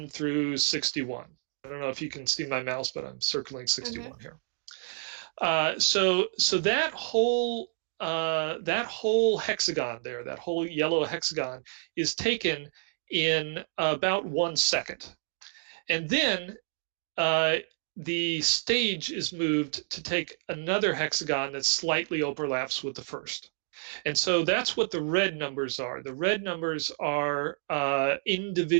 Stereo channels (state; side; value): silent; left; digital silence